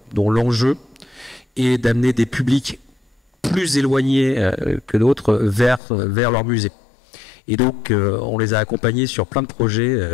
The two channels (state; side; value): drops out; right; at 5.8 s